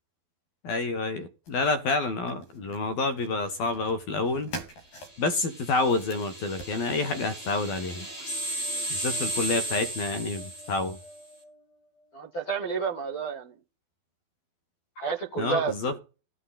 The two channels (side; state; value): right; late; 12 ms